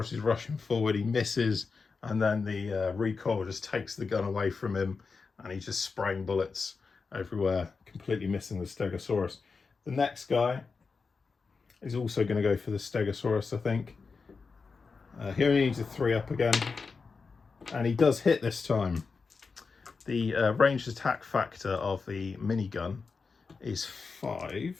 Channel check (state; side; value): quieter; right; 4.7 dB